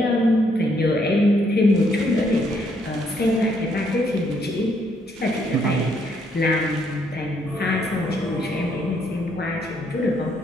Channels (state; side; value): normal; both; correlation 0.71